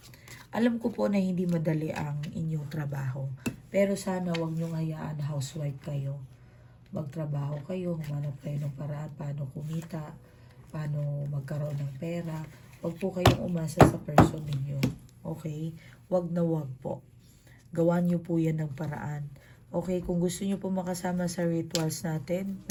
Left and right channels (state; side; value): identical; both; correlation 1.00